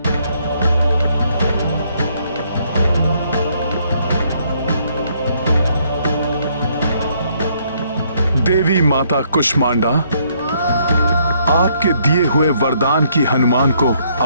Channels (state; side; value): inverted; both; correlation -0.69